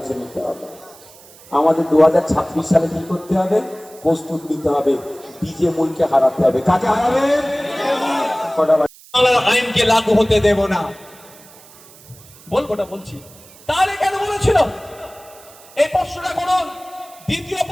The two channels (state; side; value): noise; right; hiss, 23 dB below the sound